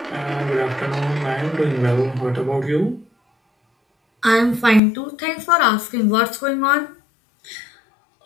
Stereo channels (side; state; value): right; drops out; at 4.8 s